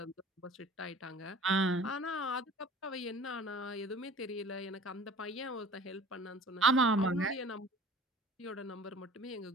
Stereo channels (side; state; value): both; normal; correlation 0.45